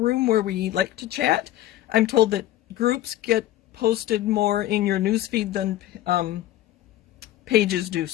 where we like to chat. I'm told that groups get posted more in your newsfeed than pages do,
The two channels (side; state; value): right; quieter; 14.0 dB